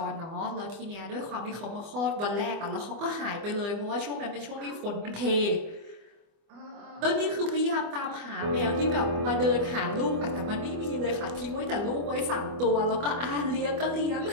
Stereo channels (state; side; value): late; left; 25 ms